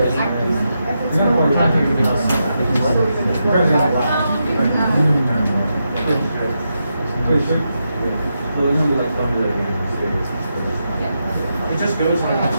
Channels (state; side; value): inverted; both; correlation -0.85